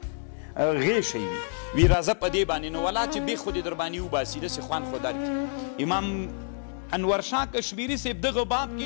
غیشی وی راځه په دې باندې نو ولا چې بیخ خو دې در باندې وباسي داسې خوند خو درکړي. امام انورشاه کشمیري صاحب دغه باب کې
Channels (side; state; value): right; silent; digital silence